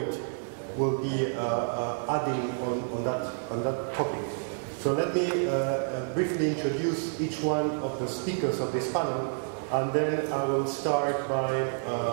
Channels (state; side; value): silent; left; digital silence